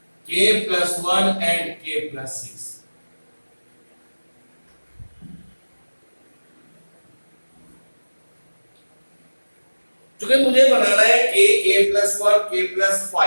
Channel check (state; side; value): inverted; both; correlation -1.00